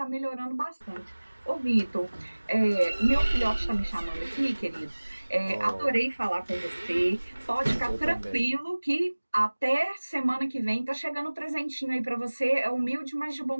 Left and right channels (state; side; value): inverted; both; correlation -1.00